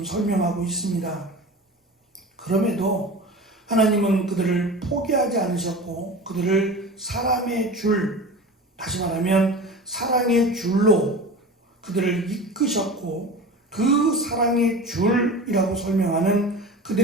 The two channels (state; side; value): normal; both; correlation 0.33